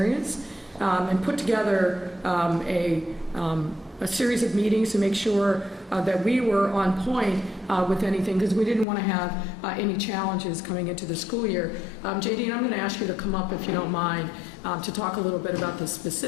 and put together a series of meetings to make sure that we were on point with anything, because we didn't want to have any challenges coming into the school year. JD, I'm going to ask you to come up, if you don't mind, to talk a little bit about the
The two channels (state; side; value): drops out; right; at 8.8 s